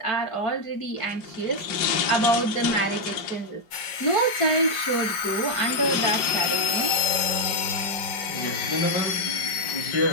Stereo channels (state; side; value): late; right; 5.0 ms